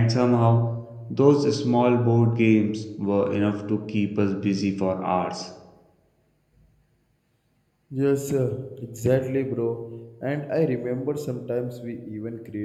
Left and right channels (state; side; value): identical; both; correlation 1.00